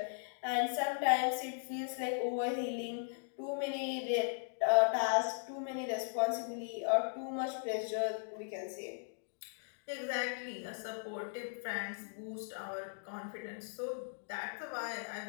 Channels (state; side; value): silent; right; digital silence